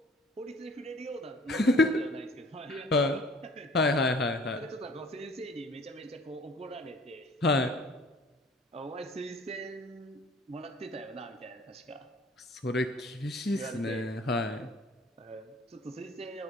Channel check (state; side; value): normal; both; correlation 0.52